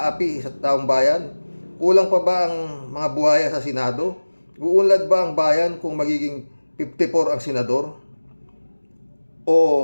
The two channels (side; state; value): both; inverted; correlation -1.00